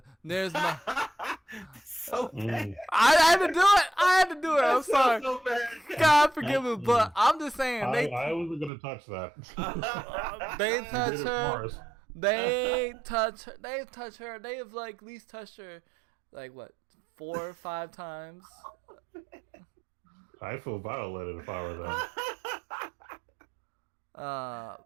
There's my. So bad. I had to do it. I'm That sorry. sounds so bad. God forgive me, but I'm just saying I wasn't gonna touch that. they You touch did it her. for us. They touch her. They've touched her. They have like at least touched her, like what, 4 or 5 times. I feel violated if I were them.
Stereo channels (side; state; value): left; drops out; at 8.7 s